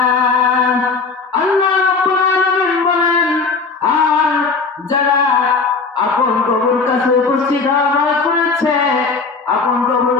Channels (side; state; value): right; quieter; 4.4 dB